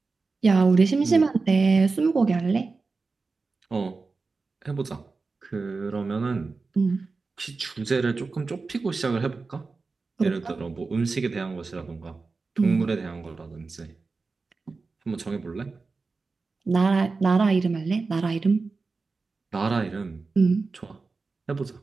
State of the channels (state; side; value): quieter; left; 4.1 dB